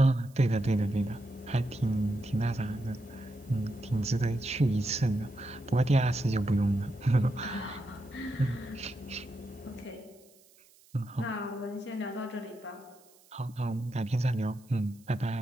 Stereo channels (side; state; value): right; noise; hiss, 28 dB below the sound